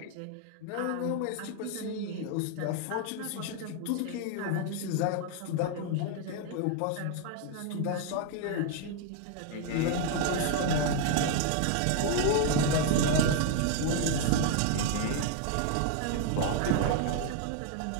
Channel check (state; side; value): different; both; correlation 0.00